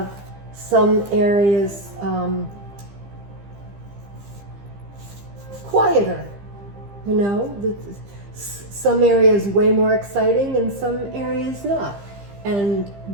some areas quieter, you know, some areas way more exciting and some areas not. And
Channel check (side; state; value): left; late; 15 ms